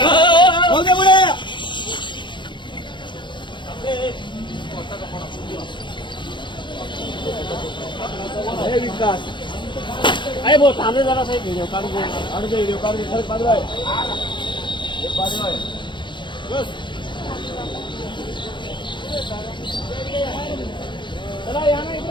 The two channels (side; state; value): right; late; 0.23 ms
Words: हो दे पुढे. हे विकास अरे भाऊ थांबले जरा साहेब, व्हिडिओ काढू दे. व्हिडिओ काढून खरंच पाडवाय. हे पाडवाय. चला या ना,